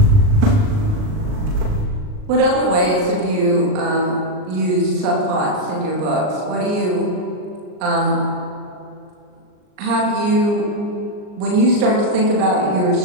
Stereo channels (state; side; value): late; left; 39 ms